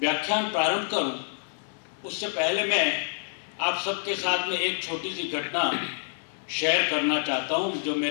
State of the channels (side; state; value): right; silent; 56 dB below the other